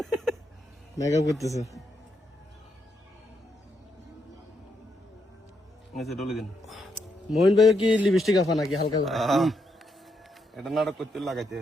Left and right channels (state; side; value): normal; both; correlation 0.79